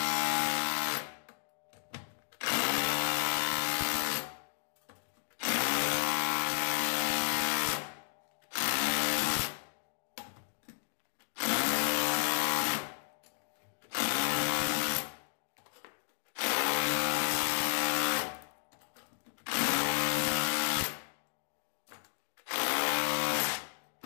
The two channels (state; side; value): silent; right; digital silence